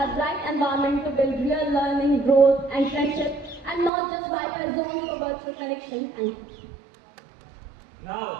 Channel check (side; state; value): left; drops out; at 3.9 s